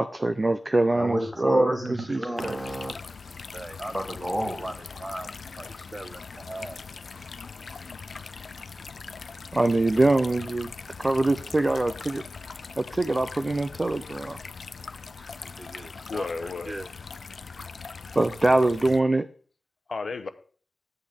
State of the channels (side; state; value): both; normal; correlation 0.97